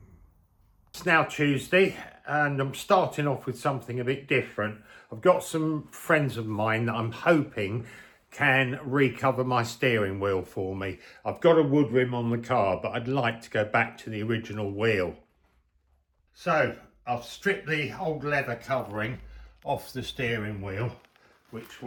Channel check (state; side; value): identical; both; correlation 1.00